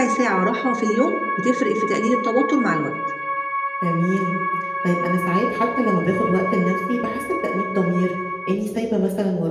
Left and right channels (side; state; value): both; identical; correlation 1.00